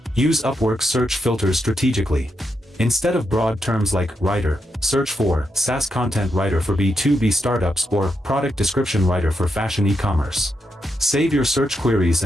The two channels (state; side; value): normal; both; correlation 0.83